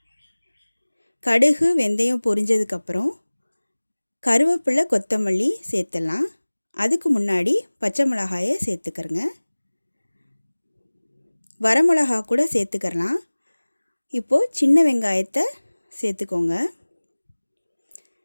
கடுகு வெந்தயம் பொரிஞ்சதுக்கப்புறம் கருவேப்பிலை, கொத்தமல்லி சேர்த்துடலாம். அதுக்கு முன்னாடி பச்சை மிளகாயை சேர்த்துக்கிறங்க. வரமிளகா கூட சேர்த்துக்கிறலாம். இப்போது சின்ன வெங்காயத்தை சேர்த்துக்கோங்க.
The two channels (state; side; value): inverted; both; correlation -1.00